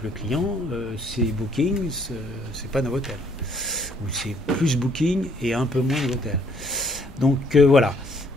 le client, c'est Booking, c'est pas Novotel. Ou c'est plus Booking et un peu moins Novotel. Donc voilà.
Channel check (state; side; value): normal; both; correlation 0.65